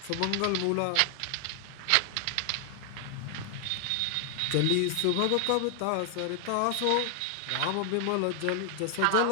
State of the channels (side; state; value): both; different; correlation 0.00